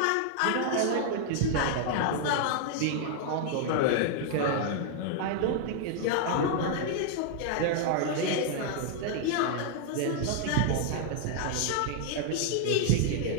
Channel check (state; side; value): different; both; correlation 0.00